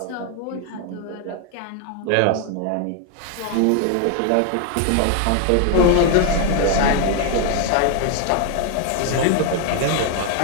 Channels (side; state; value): both; different; correlation 0.01